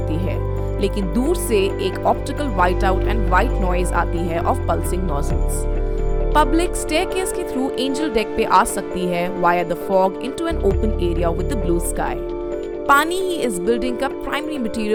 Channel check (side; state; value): both; identical; correlation 1.00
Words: है, लेकिन दूर से एक optical white out and white noise आती है of pulsing nozzles. Public staircase के थ्रू एंजल डेक पे आ सकती है via the fog into an open area with the blue sky. पानी ही इस बिल्डिंग का प्राइमरी